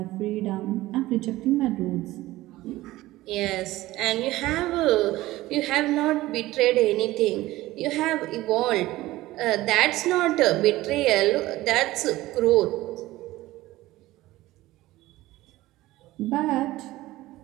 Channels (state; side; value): quieter; left; 17.3 dB